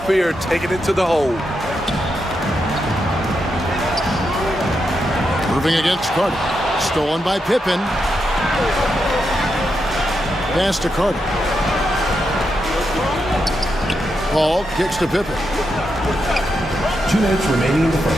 fear taking it to the hole. Irving against Carter. Stolen by Pippen. Pass to Carter. Paul kicks to Pippen. 2 minutes remaining in the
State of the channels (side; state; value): both; normal; correlation 0.84